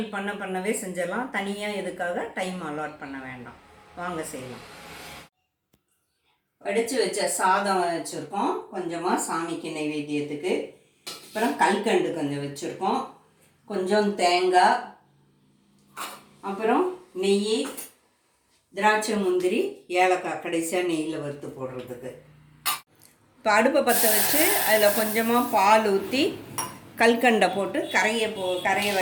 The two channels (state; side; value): identical; both; correlation 1.00